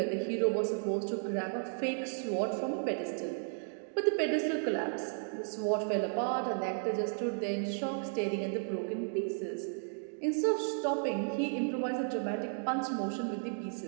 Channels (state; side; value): silent; left; digital silence